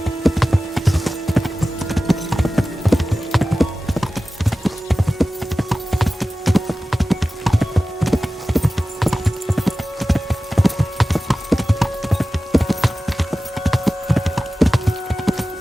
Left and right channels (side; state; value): both; normal; correlation 0.96